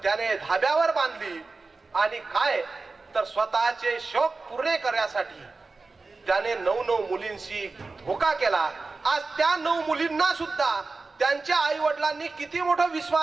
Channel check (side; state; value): left; quieter; 3.8 dB